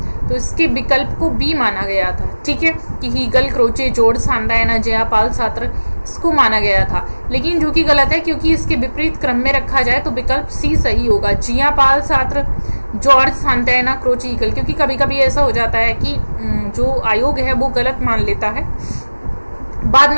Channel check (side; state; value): both; inverted; correlation -1.00